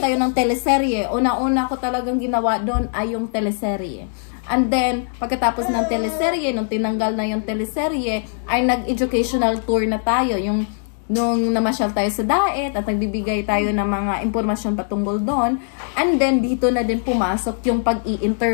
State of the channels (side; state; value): right; silent; digital silence